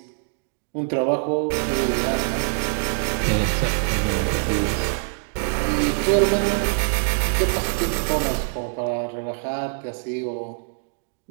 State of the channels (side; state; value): left; silent; digital silence